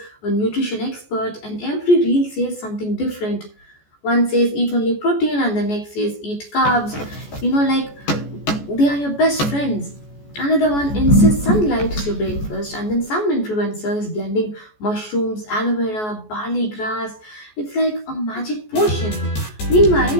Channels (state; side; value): late; right; 14 ms